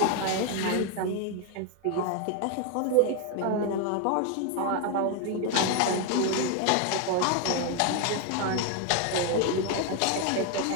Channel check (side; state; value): both; different; correlation 0.01